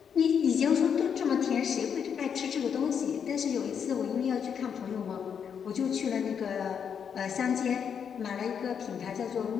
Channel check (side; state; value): right; quieter; 7.4 dB